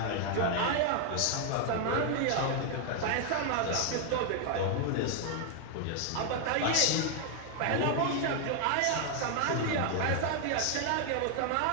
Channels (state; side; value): different; both; correlation 0.00